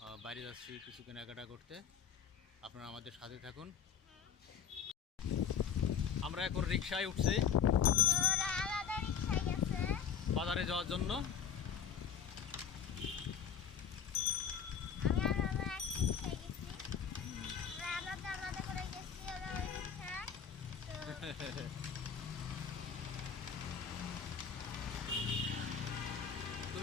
বাইরে যাচ্ছি কিছু কেনাকাটা করতে। আপনারা আমাদের সাথে থাকুন। আমরা এখন রিকশায় উঠছি বাজারে যাওয়ার জন্য।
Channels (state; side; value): quieter; right; 7.6 dB